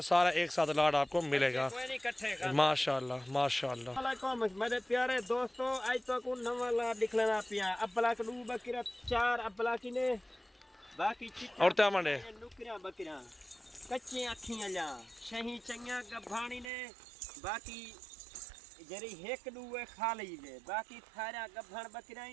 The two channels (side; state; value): left; drops out; at 16.7 s